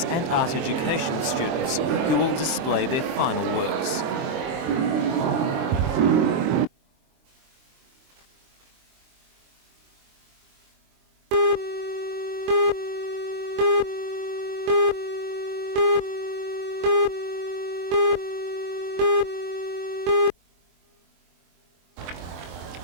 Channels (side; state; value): left; late; 23 ms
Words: and Art Education students, who will display their final works.